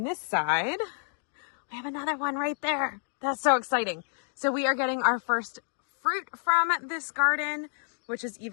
this side, We have another one right there. That's so exciting. So we are getting our first fruit from this garden, which is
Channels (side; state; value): right; silent; 58 dB below the other